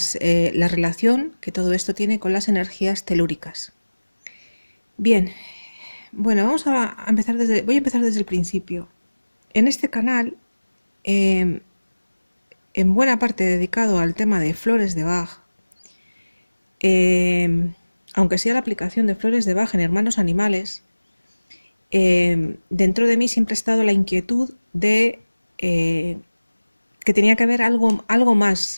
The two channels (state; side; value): inverted; both; correlation -1.00